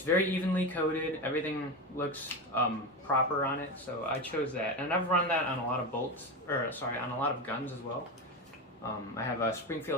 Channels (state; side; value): normal; both; correlation 0.19